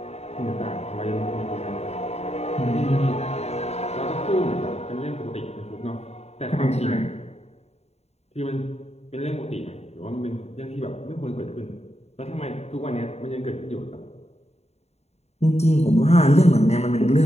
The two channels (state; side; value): late; right; 0.31 ms